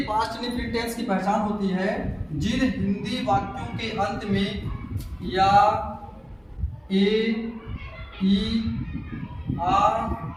पास्ट इंडेफिनिट टेंस की पहचान होती है जिन हिंदी वाक्यों के अंत में या, ए, ई, आ,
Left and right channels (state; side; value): identical; both; correlation 1.00